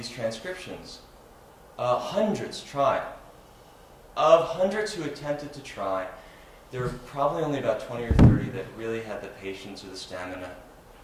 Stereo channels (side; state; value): both; identical; correlation 1.00